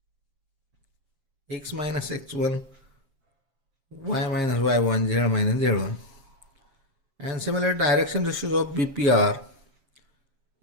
x minus x1, y minus y1, z minus z1. And similar direction ratios of BP are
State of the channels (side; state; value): left; late; 7.4 ms